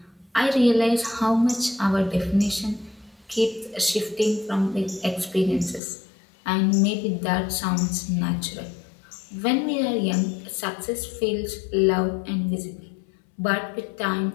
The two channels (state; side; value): drops out; right; at 5.8 s